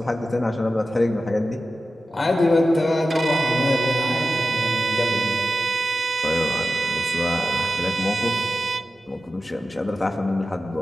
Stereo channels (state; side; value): normal; both; correlation 0.93